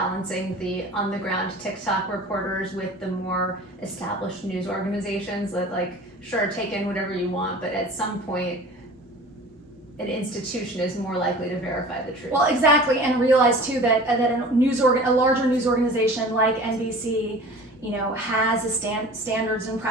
the on-the-ground TikTok reporters with the more established news organizations that, like, sure, take in whatever you want, but at some point, an institution is more likely to verify the truth? Well, exactly, and realize too that a larger news organization like NBC, has a standards and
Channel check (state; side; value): normal; both; correlation 0.41